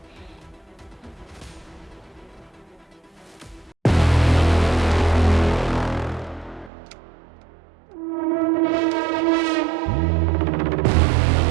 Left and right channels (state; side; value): drops out; left; at 6.7 s